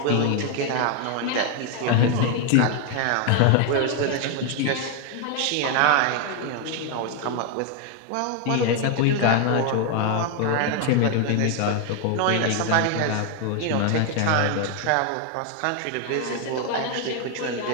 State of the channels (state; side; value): different; both; correlation 0.01